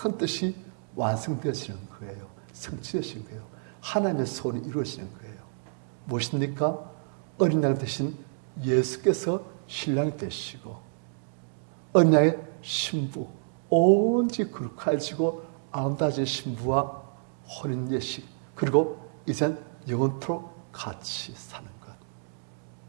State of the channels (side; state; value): left; silent; digital silence